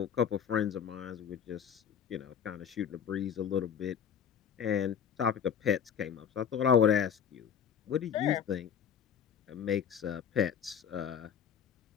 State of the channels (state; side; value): quieter; right; 8.0 dB